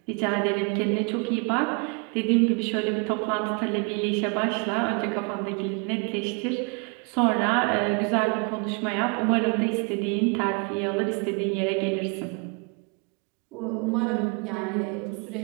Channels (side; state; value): left; quieter; 34.1 dB